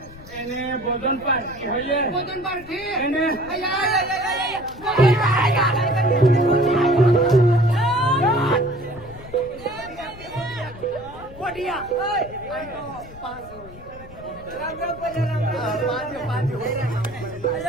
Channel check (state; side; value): noise; left; rumble, 18 dB below the sound